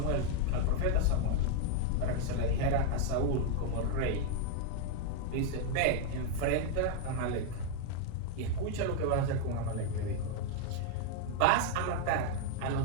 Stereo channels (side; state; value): both; different; correlation 0.00